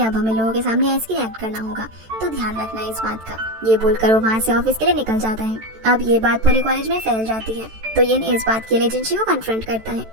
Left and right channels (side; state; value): left; late; 14 ms